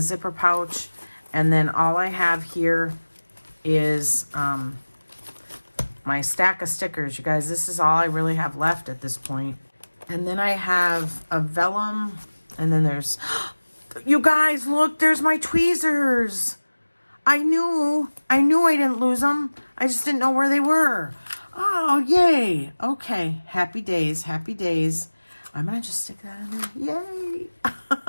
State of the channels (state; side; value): inverted; both; correlation -1.00